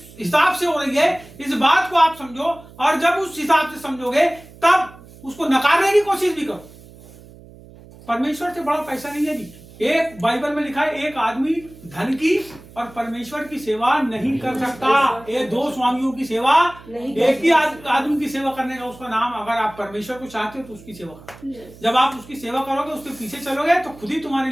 हिसाब से हो रही है, इस बात को आप समझो, और जब उस हिसाब से समझोगे तब उसको नकारने की कोशिश भी करो। परमेश्वर से बड़ा पैसा नहीं है जी। एक बाइबल में लिखा है, एक आदमी धन की और परमेश्वर की सेवा नहीं कर सकता। ये 2 स्वामियों की सेवा, एक ही आदमी की सेवा करने का उसका नाम, अगर आप परमेश्वर को चाहते हो तो उसकी सेवा करो। जब आप उसकी सेवा करोगे, उसके पीछे चलोगे, तो खुद ही तुम्हारे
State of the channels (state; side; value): noise; right; hum, 21 dB below the sound